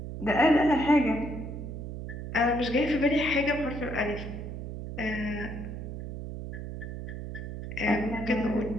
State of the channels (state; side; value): noise; right; hum, 8 dB below the sound